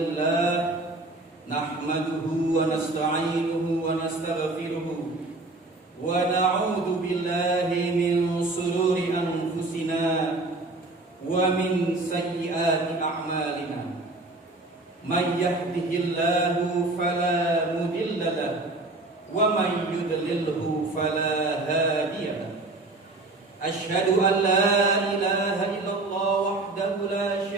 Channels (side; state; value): left; quieter; 3.0 dB